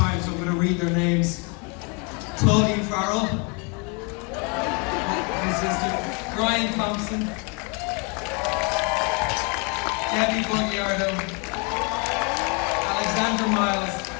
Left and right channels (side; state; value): right; quieter; 33.4 dB